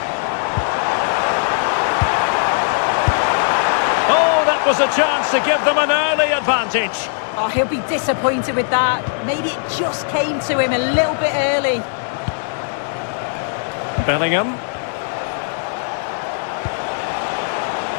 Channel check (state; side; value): silent; right; digital silence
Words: Oh, that was a chance to give them an early advantage. Oh, he'll be disappointed with that. Maybe it just came to him a little bit early. Bellingham.